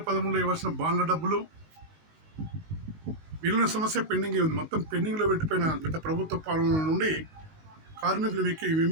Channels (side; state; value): left; late; 19 ms